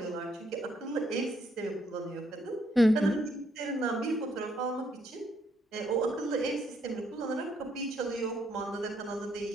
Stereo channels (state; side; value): normal; both; correlation 0.72